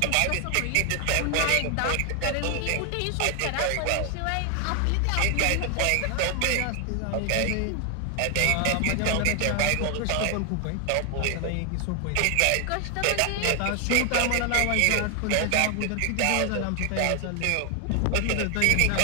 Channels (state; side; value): different; both; correlation 0.00